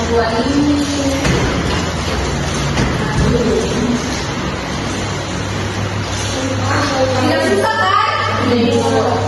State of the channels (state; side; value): identical; both; correlation 1.00